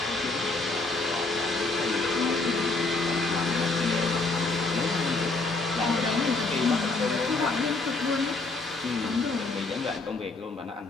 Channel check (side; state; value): right; quieter; 3.4 dB